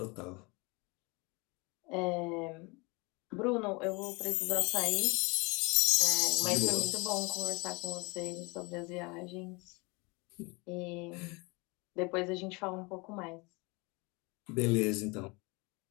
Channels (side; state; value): right; quieter; 27.4 dB